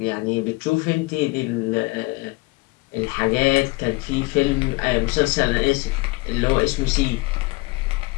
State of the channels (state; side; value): quieter; right; 23.6 dB